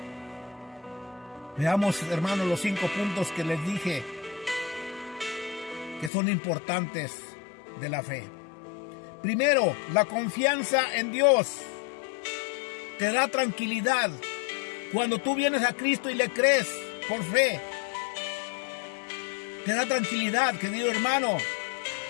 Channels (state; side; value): drops out; right; at 6.1 s